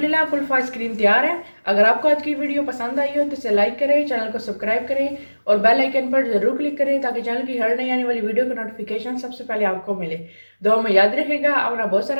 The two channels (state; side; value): inverted; both; correlation -1.00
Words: कुल्फ़ा आइसक्रीम तैयार है। अगर आपको आज की वीडियो पसंद आई हो तो इसे लाइक करें, चैनल को सब्सक्राइब करें और बेल आइकन पर ज़रूर क्लिक करें ताकि चैनल की हर नई आने वाली वीडियो का नोटिफिकेशन सबसे पहले आपको मिले। दुआ में याद रखिएगा, अपना बहुत